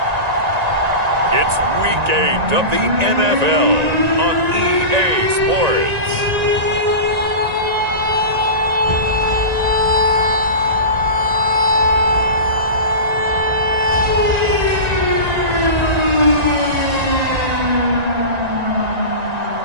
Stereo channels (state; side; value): late; left; 1.9 ms